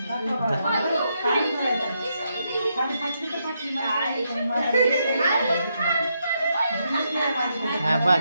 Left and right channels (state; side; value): inverted; both; correlation -0.80